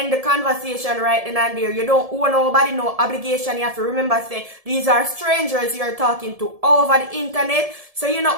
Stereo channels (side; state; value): left; late; 1.7 ms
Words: the conversation right then and there. You don't owe nobody no obligation. You have to remember, say, these are strangers you're talking to over the internet. So you